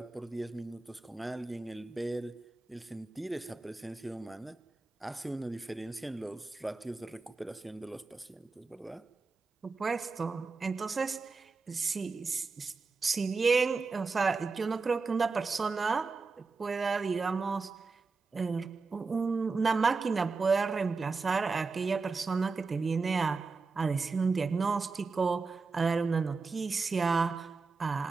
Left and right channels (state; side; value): quieter; left; 4.3 dB